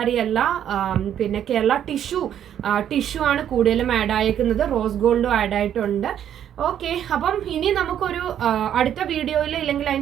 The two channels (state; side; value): quieter; left; 10.0 dB